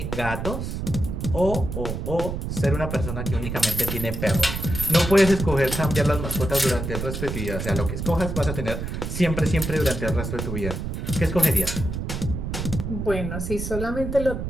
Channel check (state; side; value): noise; right; rumble, 4 dB below the sound